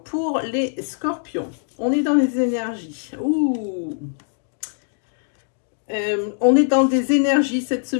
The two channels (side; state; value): right; silent; digital silence